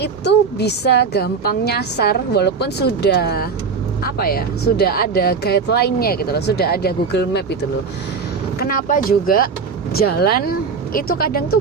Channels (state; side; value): quieter; left; 5.3 dB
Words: bisa gampang nyasar walaupun sudah sudah ada guideline-nya gitu loh, sudah ada Google Map itu loh. Kenapa juga jalan itu kadang tuh